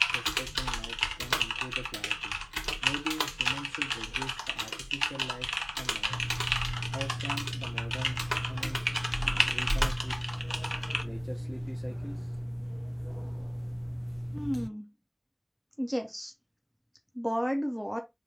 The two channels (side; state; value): both; identical; correlation 1.00